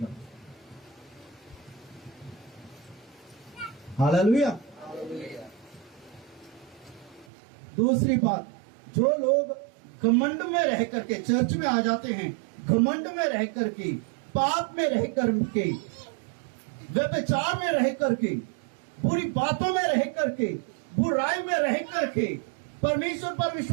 हालेलुया। दूसरी बात, जो लोग घमंड में रह करके चर्च में आ जाते हैं, घमंड में रह करके, पाप में रह करके, व्यभिचार में रह करके, बुरी बातों में रह करके, बुराई में रह करके, परमेश्वर पर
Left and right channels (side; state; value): left; drops out; at 7.2 s